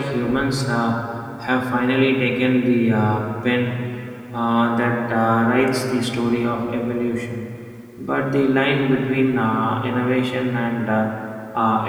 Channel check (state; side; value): identical; both; correlation 1.00